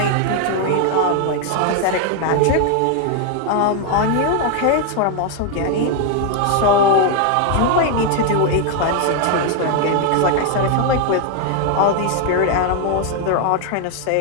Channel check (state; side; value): different; both; correlation 0.01